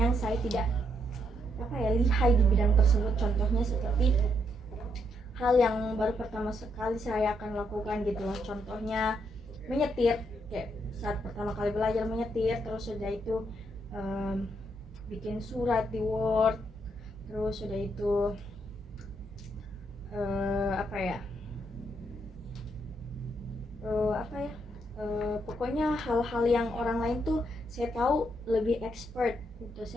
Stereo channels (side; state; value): left; noise; rumble, 26 dB below the sound